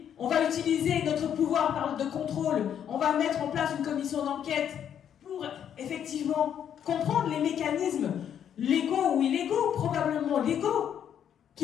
on va utiliser notre pouvoir de contrôle, on va mettre en place une commission d'enquête pour effectivement comprendre les mécanismes légaux ou illégaux, probablement légaux,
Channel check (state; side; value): quieter; right; 9.1 dB